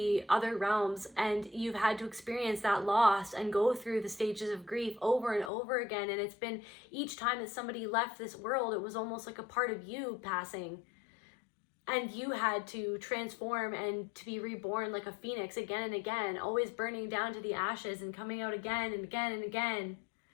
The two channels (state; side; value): drops out; right; at 5.5 s